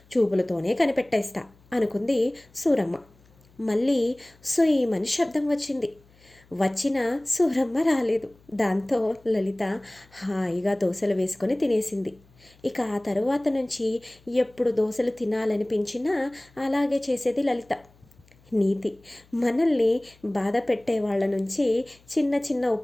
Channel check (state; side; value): noise; left; hum, 29 dB below the sound